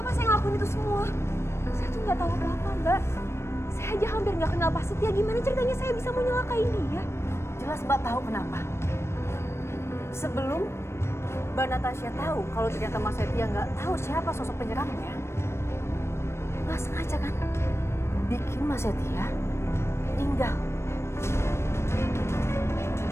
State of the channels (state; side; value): late; right; 0.13 ms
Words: saya ngelakuin itu semua? Saya tuh nggak tahu apa-apa, Mbak. Saya aja hampir nggak kenal Pak Setia. Gimana ceritanya saya bisa mau nyelakain dia? Jelas Mbak tahu kenapa. Sebelum Mbak Natasha tahu kalau ternyata Mas Setia nggak tahu siapa sosok penyerangnya, nggak sengaja kan bikin Mas Setia meninggal.